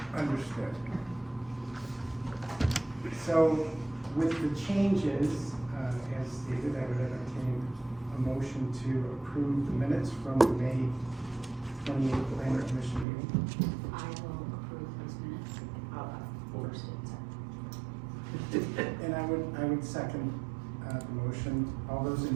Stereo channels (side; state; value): left; drops out; at 13.1 s